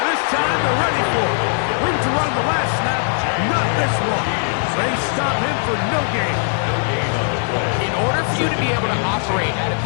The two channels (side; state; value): right; silent; 60 dB below the other